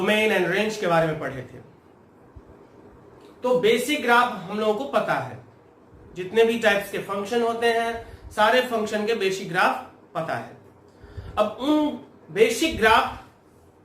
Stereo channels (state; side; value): identical; both; correlation 1.00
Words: and range के बारे में पढ़े थे। तो बेसिक ग्राफ हम लोगों को पता है, जितने भी टाइप्स के फंक्शन होते हैं सारे फंक्शन के बेसिक ग्राफ पता है। अब उन बेसिक ग्राफ